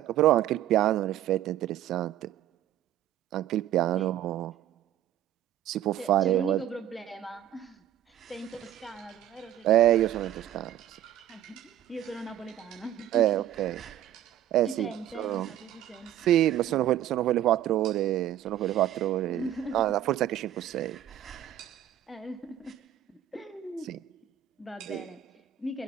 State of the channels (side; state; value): left; quieter; 11.8 dB